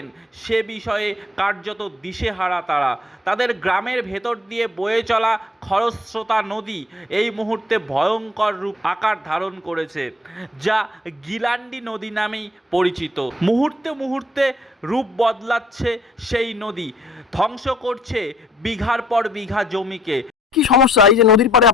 সে বিষয়ে কার্যত দিশেহারা তারা। তাদের গ্রামের ভেতর দিয়ে বয়ে চলা খরস্রোতা নদী এই মুহূর্তে ভয়ঙ্কর রূপ আকার ধারণ করেছে, যা গিলান্ডি নদী নামেই পরিচিত। মুহূর্তে মুহূর্তে রূপ বদলাচ্ছে সেই নদী, ধ্বংস করছে বিঘার পর বিঘা জমিকে। কি সমস্যা এই যে নদীর পাড়ে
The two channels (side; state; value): both; normal; correlation 0.62